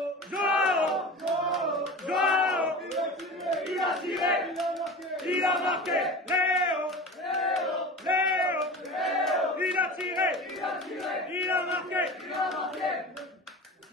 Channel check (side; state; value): both; normal; correlation 0.33